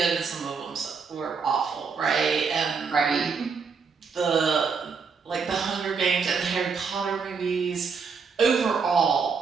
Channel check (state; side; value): quieter; left; 5.4 dB